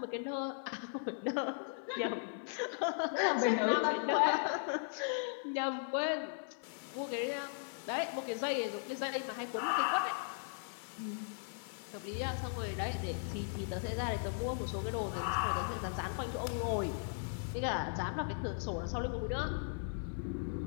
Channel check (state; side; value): silent; right; digital silence